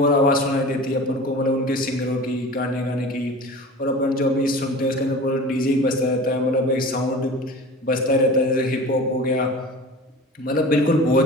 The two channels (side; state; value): both; normal; correlation 0.37